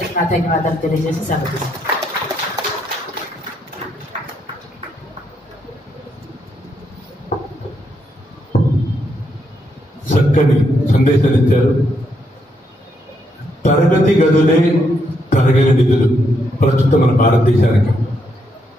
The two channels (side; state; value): both; normal; correlation 0.77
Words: నా ధన్యవాదాలు తెలియజేసి సెలవు. చక్కని సందేశాలు ఇచ్చారు. తరగతి గదులే తరగని నిధులు ప్రస్తుతం మన భారతదేశానికి.